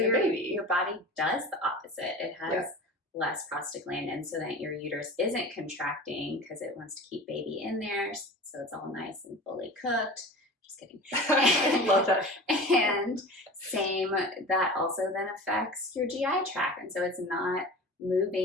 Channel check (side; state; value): both; normal; correlation 0.35